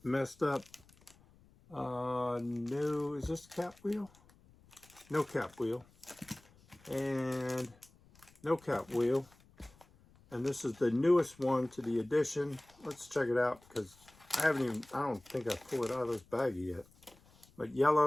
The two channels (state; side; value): noise; left; rumble, 28 dB below the sound